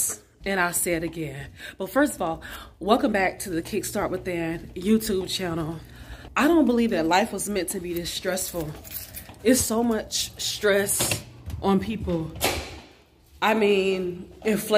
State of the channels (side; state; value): both; identical; correlation 1.00